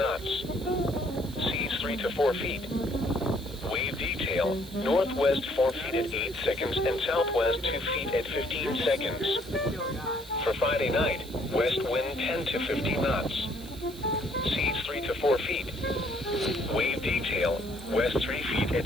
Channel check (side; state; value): right; noise; hiss, 18 dB below the sound